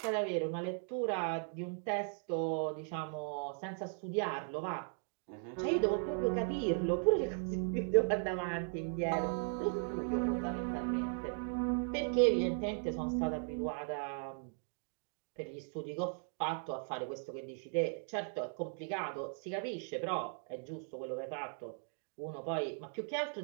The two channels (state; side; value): silent; left; 53 dB below the other